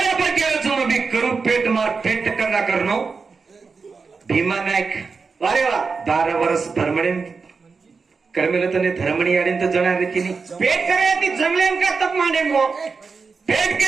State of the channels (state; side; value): quieter; left; 4.8 dB